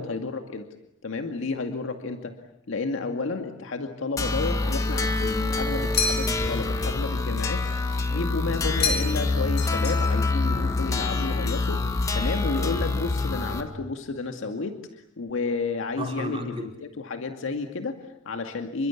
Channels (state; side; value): quieter; right; 3.0 dB